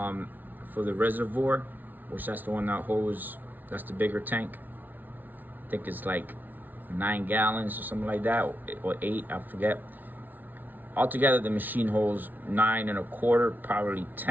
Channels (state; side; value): late; left; 0.083 ms